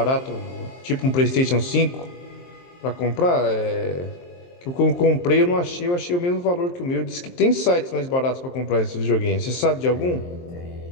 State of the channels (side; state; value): right; late; 23 ms